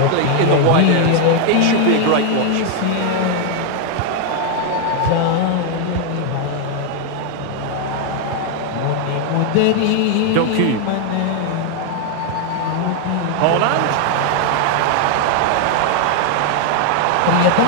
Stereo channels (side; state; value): both; different; correlation 0.00